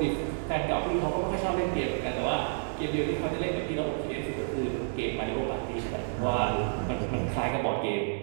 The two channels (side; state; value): left; silent; digital silence